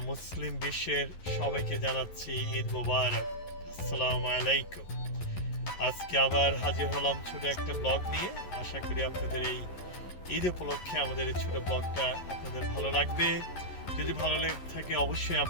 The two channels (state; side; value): late; right; 11 ms